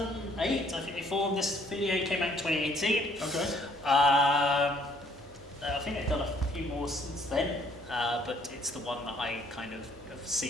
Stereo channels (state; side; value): normal; both; correlation 0.63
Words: I think they formed. This video came out in 2018. Okay. I think they've done a few more since then, but it's the one that I kind of have